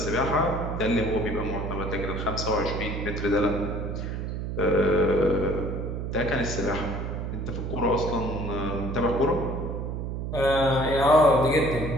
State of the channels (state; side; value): noise; right; hum, 4 dB below the sound